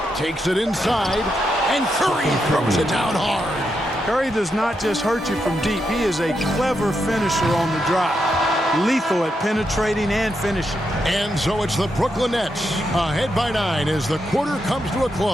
Takes it inside. And Curry throws it down hard. Curry does not just hurt you from deep. He is a clever finisher on the drive. Lethal at penetrating and finishing. And so it's the Brooklyn Nets ahead by 9 as the quarter comes to a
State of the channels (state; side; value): normal; both; correlation 0.83